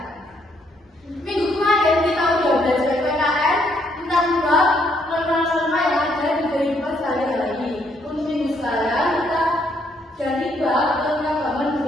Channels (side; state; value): both; normal; correlation 0.71